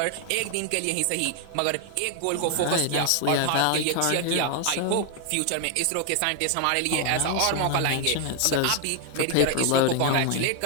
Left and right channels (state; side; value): different; both; correlation 0.00